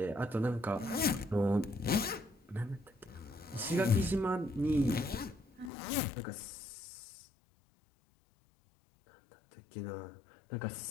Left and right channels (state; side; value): drops out; right; at 5.7 s